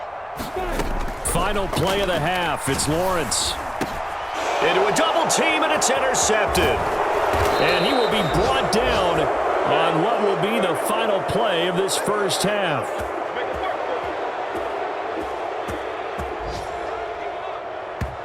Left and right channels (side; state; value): both; identical; correlation 1.00